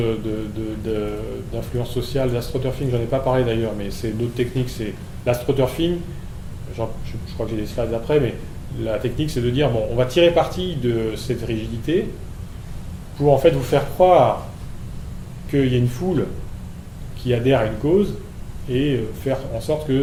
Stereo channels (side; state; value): both; identical; correlation 1.00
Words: d'influence sociale, d'astroturfing, j'en ai pas parlé d'ailleurs, mais c'est d'autres techniques, c'est l'astroturfing, je crois que j'ai des slides après, mais la technique c'est de dire, bon, on va tirer parti de cette rigidité pour en fait vous faire croire qu'il y a une foule qui adhère à une cause et faire en sorte